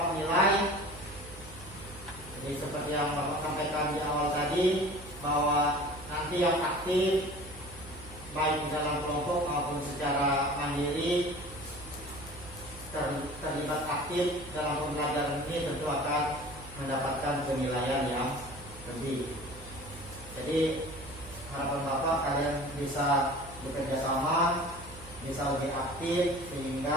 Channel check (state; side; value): noise; right; hum, 17 dB below the sound